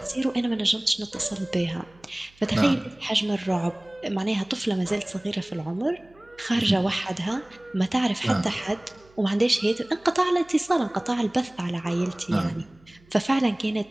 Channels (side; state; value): right; noise; hum, 29 dB below the sound